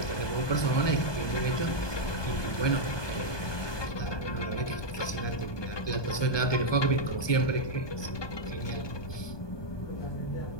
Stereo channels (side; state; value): right; late; 1.2 ms